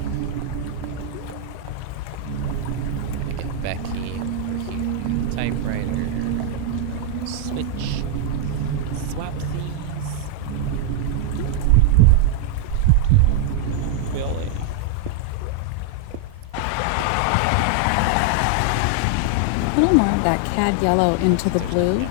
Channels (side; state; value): both; different; correlation 0.00